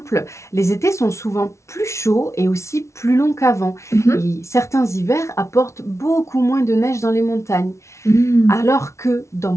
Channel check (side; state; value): right; late; 0.13 ms